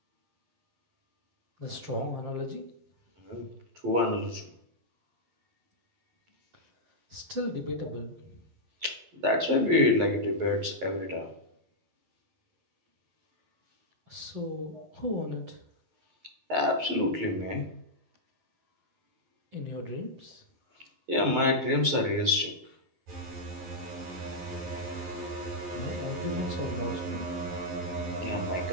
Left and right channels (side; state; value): left; late; 11 ms